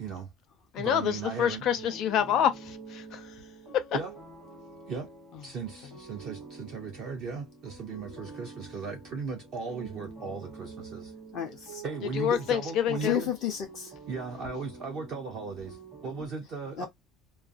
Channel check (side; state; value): right; quieter; 4.6 dB